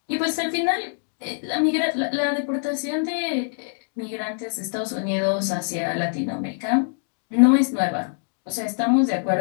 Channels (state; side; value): silent; right; digital silence